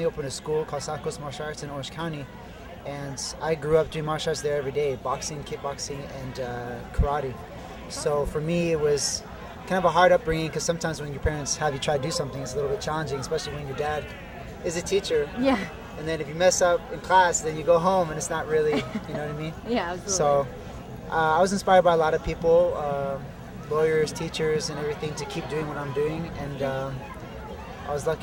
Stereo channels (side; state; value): both; identical; correlation 1.00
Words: opened a school called Sahagun Martial Arts in Orange County, and I grew up doing martial arts there every day: boxing, kickboxing, and karate. So for me, it was kind of a hard upbringing because sometimes when your parents have you try to do something, it's a little bit challenging, especially when your dad is a teacher. Yeah. And then if you mess up in class, then you go home and it's not really, you know what I mean? Yeah, absolutely. So I was inspired by a lot of people, lawyers, teachers, and everything to keep doing what I'm doing. And I was